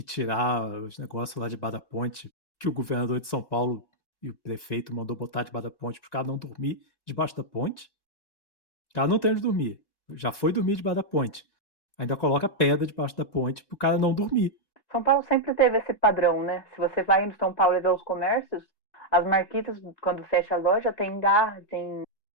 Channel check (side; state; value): right; late; 1.9 ms